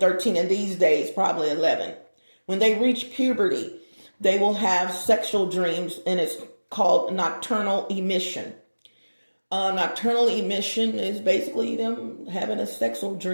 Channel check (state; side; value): inverted; both; correlation -1.00